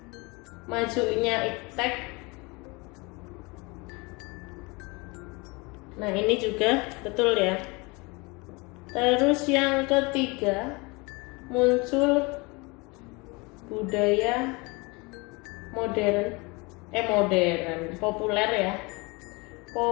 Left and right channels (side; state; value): right; quieter; 26.8 dB